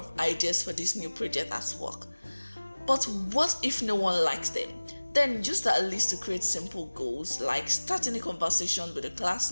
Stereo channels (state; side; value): inverted; both; correlation -1.00